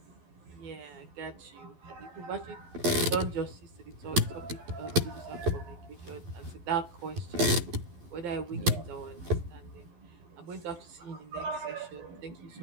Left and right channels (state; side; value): late; left; 12 ms